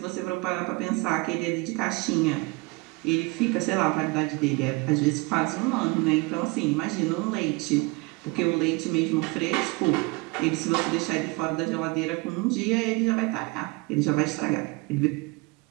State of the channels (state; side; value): quieter; left; 25.9 dB